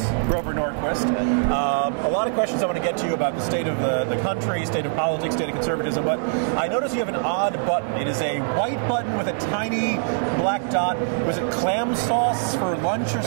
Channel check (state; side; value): silent; left; digital silence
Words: Grover Norquist. A lot of questions I want to get to you about the state of the country, state of politics, state of conservatism, but I notice you have an odd button. It is a white button with a tiny black dot. Was it clam sauce for lunch or